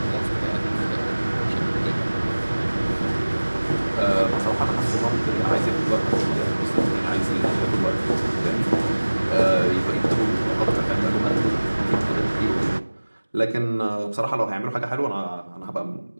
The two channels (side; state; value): both; inverted; correlation -1.00